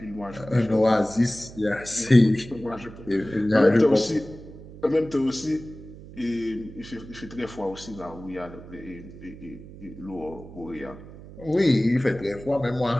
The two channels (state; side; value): noise; right; hum, 16 dB below the sound